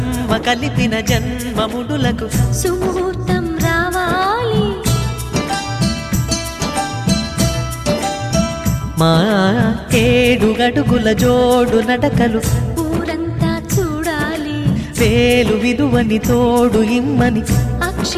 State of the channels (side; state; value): both; identical; correlation 1.00